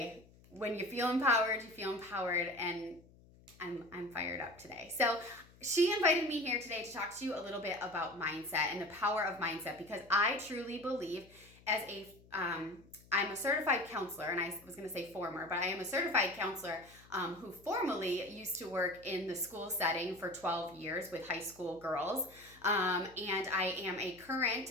when you feel empowered, and I'm fired up today. So she invited me here today to talk to you a little bit about mindset and the power of mindset, because I truly believe as I'm a certified counselor, and I was going to say former, but I am a certified counselor who formerly used to work in the school setting for 12 years with high school girls. And I am a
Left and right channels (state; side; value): noise; left; hum, 25 dB below the sound